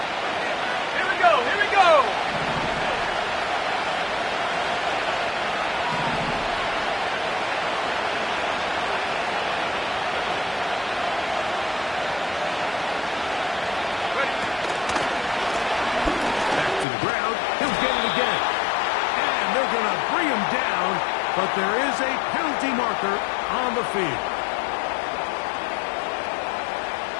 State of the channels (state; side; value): drops out; right; at 16.9 s